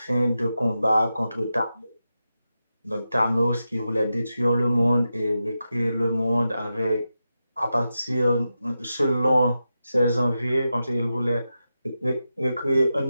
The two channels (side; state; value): both; inverted; correlation -0.90